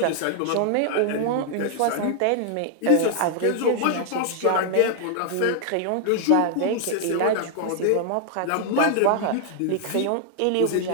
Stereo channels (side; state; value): both; different; correlation -0.01